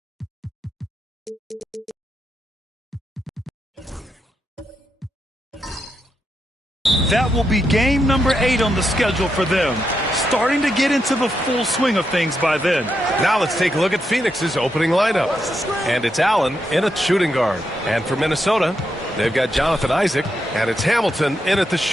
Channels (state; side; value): normal; both; correlation 0.83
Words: That will be game number 8 on the schedule for them. Starting to get into the full swing of things by then. Now let's take a look at Phoenix's opening lineup. And it's Allen in at shooting guard. And for Minnesota, they've got Jonathan Isaac, and it's Hamilton in at the